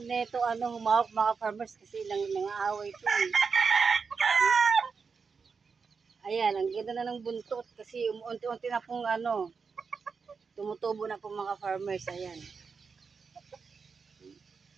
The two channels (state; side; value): quieter; left; 5.3 dB